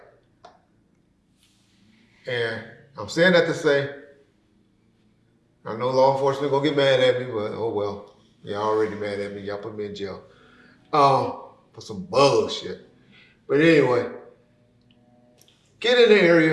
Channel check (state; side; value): identical; both; correlation 1.00